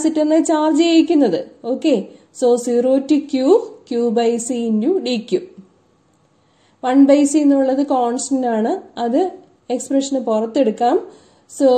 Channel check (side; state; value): both; identical; correlation 1.00